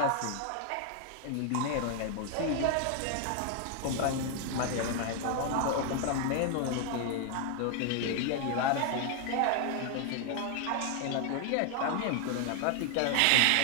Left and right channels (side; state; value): both; different; correlation 0.00